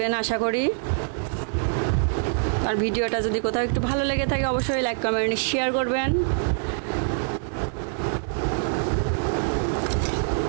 আশা করি। আর ভিডিওটা যদি কোথাও একটু ভালো লেগে থাকে অবশ্যই লাইক কমেন্ট শেয়ার করবেন।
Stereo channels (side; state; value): left; silent; 62 dB below the other